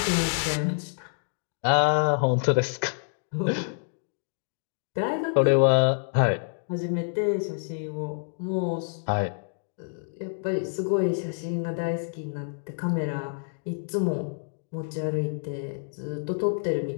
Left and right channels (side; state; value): right; silent; digital silence